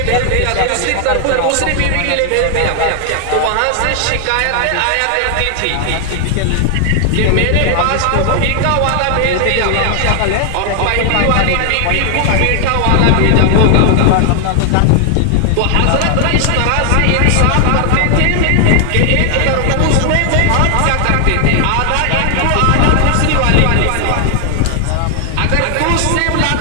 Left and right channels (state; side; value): different; both; correlation 0.00